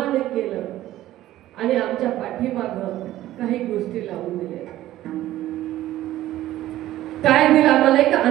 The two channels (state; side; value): quieter; left; 14.4 dB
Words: केलं आणि आमच्या पाठीमागं काही गोष्टी लावून दिल्या. काय दिलं आम्हाला? एक